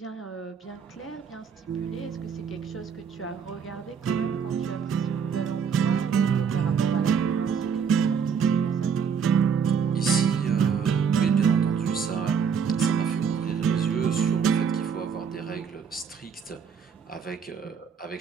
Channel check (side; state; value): left; quieter; 6.7 dB